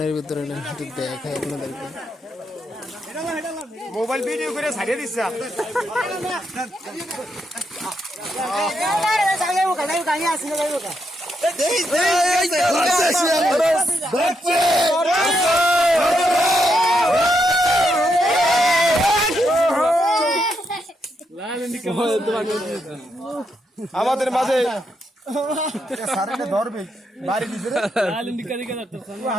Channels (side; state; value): both; normal; correlation 0.80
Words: ভিতরে একটু দেখাই আপনাদেরকে মোবাইল ভিডিও করে ছাড়িয়ে দিচ্ছে আমাদের মাঝে ধরবে বাড়ি